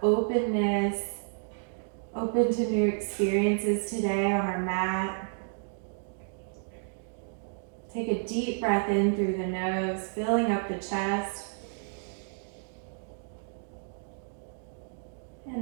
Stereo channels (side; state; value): left; silent; digital silence